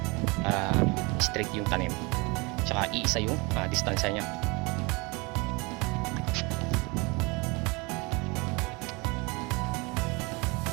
para straight yung tanim, tsaka iisa yung distansya niya.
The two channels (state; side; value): quieter; left; 27.0 dB